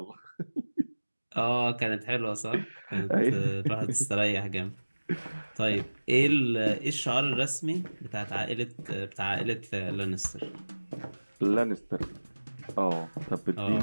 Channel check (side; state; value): both; inverted; correlation -1.00